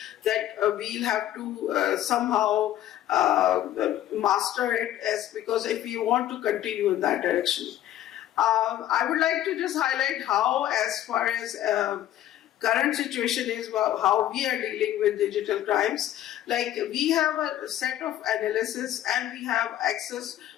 that we'll have to somehow master it, because if we want to continue in that direction. I would like to just highlight how, as far as current situation is, how we are dealing with digital crimes. Like, we have a set of analysis and we have access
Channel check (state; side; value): quieter; right; 12.6 dB